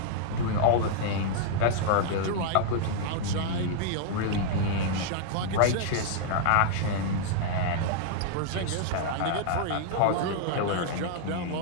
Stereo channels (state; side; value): different; both; correlation -0.01